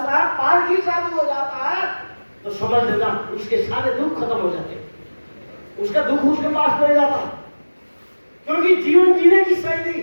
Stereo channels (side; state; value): both; inverted; correlation -1.00